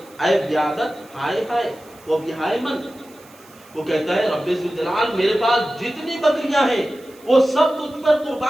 اے بیادت ہائے ہائے وہ بہائے من۔ وہ کہتا ہے رب ذوالجلال میرے پاس جتنی بکریاں ہیں وہ سب تجھ پر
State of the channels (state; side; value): noise; right; hiss, 26 dB below the sound